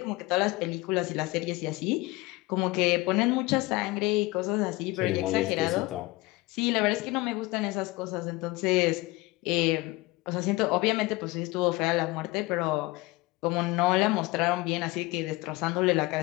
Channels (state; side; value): quieter; right; 21.6 dB